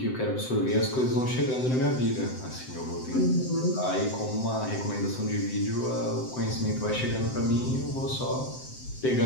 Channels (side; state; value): right; late; 7.8 ms